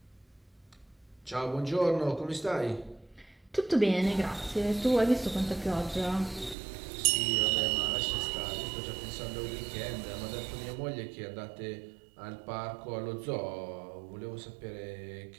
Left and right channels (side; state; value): left; drops out; at 6.6 s